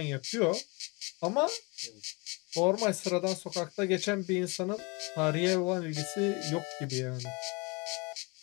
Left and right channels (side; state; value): right; quieter; 28.3 dB